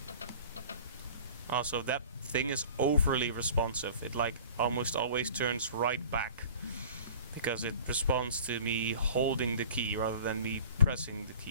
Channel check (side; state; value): both; inverted; correlation -0.45